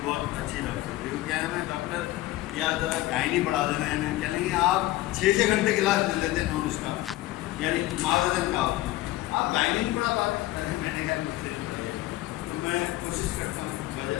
بہت اچھی ڈاکٹر تھی. وہ کیا ہے، میں ڈاکٹر یا ذرا گائنی پڑھا دینا ہے. انہیں کہیں گے آپ 6 گھنٹے کلاس لے لیتے ہیں نان اسٹاپ، یعنی معذرت کا ہوتا ہے، آپ گائنی نہیں پڑھا پاتے. میں نے کہا مجھ سے نہیں پڑھائیے. تو میں کوشش کرتا ہوں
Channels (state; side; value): quieter; right; 17.2 dB